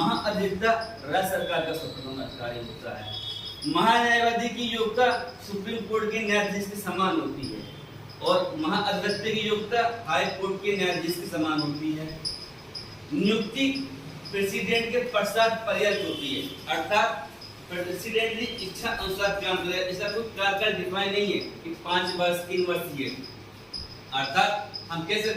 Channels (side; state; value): both; identical; correlation 1.00